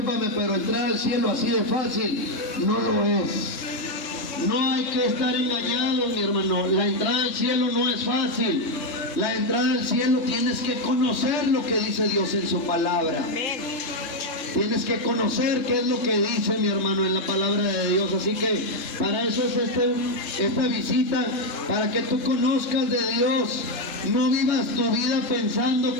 pero entrar al cielo así de fácil no lo es. No hay que estar engañados, mi hermano. La entrada al cielo no es fácil. La entrada al cielo tienes que conocer lo que dice Dios en su palabra. Amén. Tienes que conocer qué es lo que dice, mi hermano, en la palabra de Dios. Así que para eso es esta visita, para que tú conozcas de Dios. No vivas tu vida pensando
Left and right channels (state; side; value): late; right; 3.7 ms